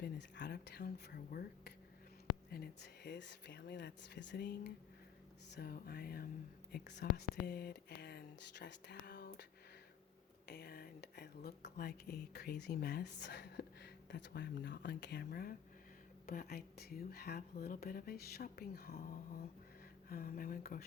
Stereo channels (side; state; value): right; quieter; 9.0 dB